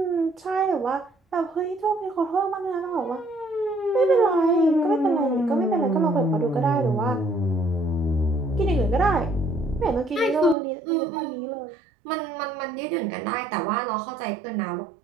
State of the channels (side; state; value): left; drops out; at 10.6 s